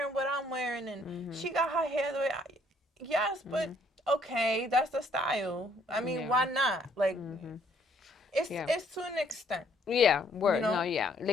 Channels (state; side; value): normal; both; correlation 0.65